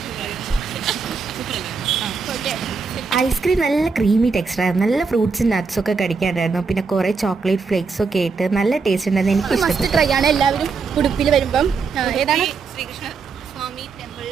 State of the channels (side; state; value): left; quieter; 4.9 dB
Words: ഐസ്ക്രീം നല്ല ക്രീമി ടെക്സ്ചർ ആയിരുന്നു. നല്ല ഫ്രൂട്ട്സും നട്ട്സും ഒക്കെ കടിക്കാനായിരുന്നു. പിന്നെ കുറേ ചോക്ലേറ്റ് ഫ്ലേക്സ് ഒക്കെ ആയിട്ട് നല്ല ടേസ്റ്റ് ഉണ്ടായിരുന്നു. എനിക്ക് മസ്റ്റ് ട്രൈ ആണ്. എല്ലാവരും ഉടുപ്പിൽ വരുമ്പം ഏതാണ് ശ്രീകൃഷ്ണ സ്വാമി